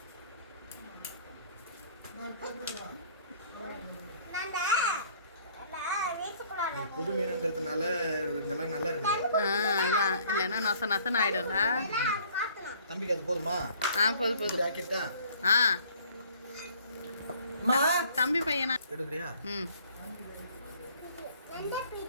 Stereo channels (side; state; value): both; inverted; correlation -0.56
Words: புது மீன்ன்றதுனால இதெல்லாம் நல்லா இருக்குது. அதான் இல்லைன்னா நொசன் ஆயிடும்ல. தம்பிக்கு அது போதுமா? போதும் ஆக்கிட்டா? தம்பி பையனா எடுக்கிறியா?